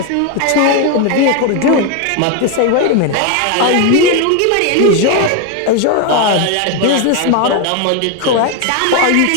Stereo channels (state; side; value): different; both; correlation 0.01